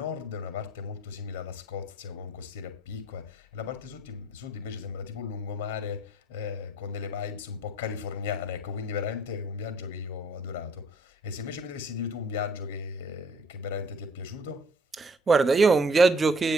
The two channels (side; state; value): both; normal; correlation 0.58